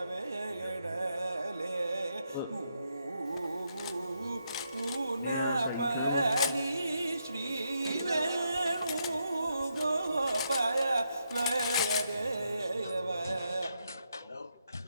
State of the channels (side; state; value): both; inverted; correlation -0.80